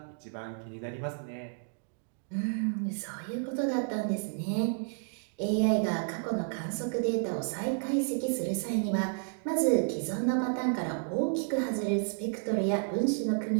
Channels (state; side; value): silent; left; digital silence